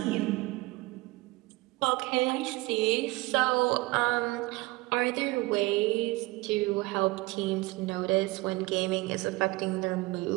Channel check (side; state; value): left; quieter; 22.0 dB